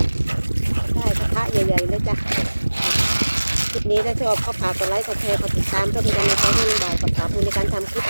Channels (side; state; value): both; inverted; correlation -1.00